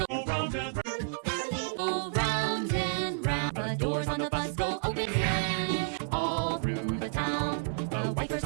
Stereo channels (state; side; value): silent; left; 57 dB below the other